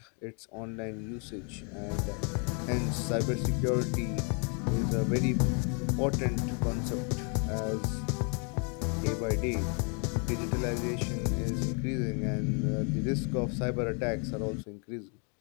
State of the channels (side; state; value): right; quieter; 37.7 dB